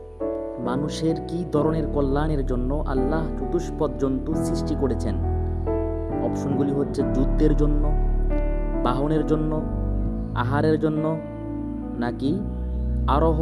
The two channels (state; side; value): identical; both; correlation 1.00